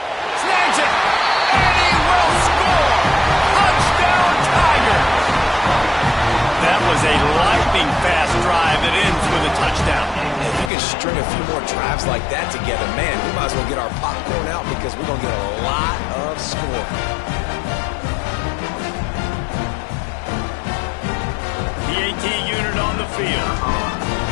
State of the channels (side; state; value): right; drops out; at 10.7 s